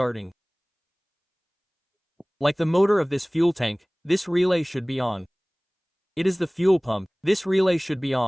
Like the motor of this fuel tank, this relay should be on. It is the fuel pump, this relay should be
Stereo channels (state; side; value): identical; both; correlation 1.00